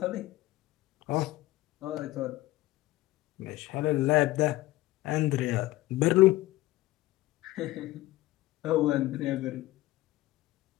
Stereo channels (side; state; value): right; quieter; 17.5 dB